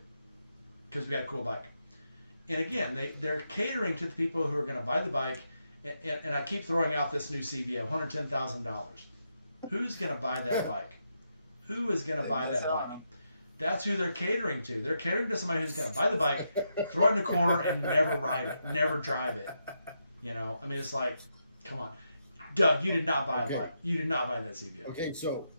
because we got a cool bike. And again, they're catering to the people who are going to buy the bike. And I keep throwing out this new CVO, $110,000. Who's going to buy that bike? Who is going to buy that bike? That's who they're catering to. They're catering to somebody who's going to buy the bike, throw it in the corner, and never ride it, never drive it. I mean, it's like, come on. Doug, you did not buy a bike. You did not buy that CVO. Okay,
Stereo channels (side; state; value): both; inverted; correlation -0.83